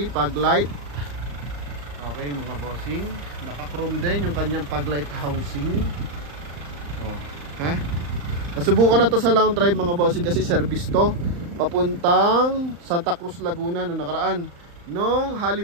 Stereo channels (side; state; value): left; late; 35 ms